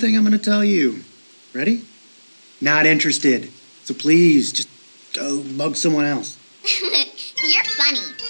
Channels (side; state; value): both; inverted; correlation -1.00